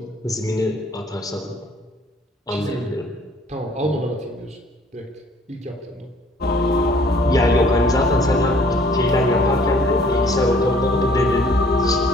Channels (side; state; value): both; normal; correlation 0.58